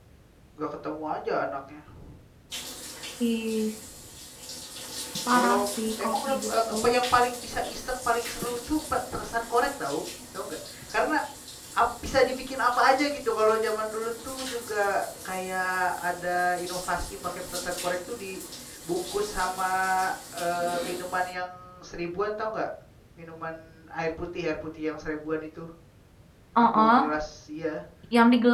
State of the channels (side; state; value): both; identical; correlation 1.00